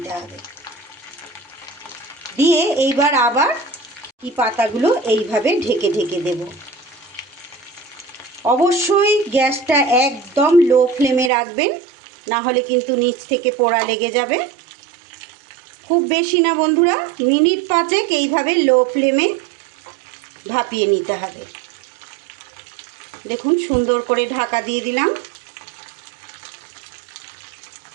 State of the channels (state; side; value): drops out; left; at 11.3 s